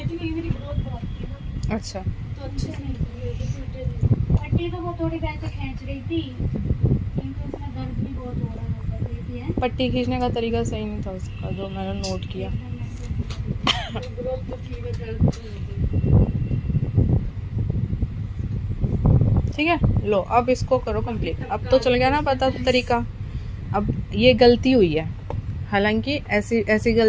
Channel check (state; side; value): identical; both; correlation 1.00